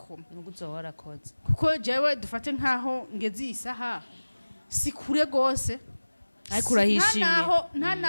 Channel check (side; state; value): both; inverted; correlation -1.00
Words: nuko uzowarakoze kuko jewe dufate nkaho ngeze isaha sikure gose ariko urahishimye nta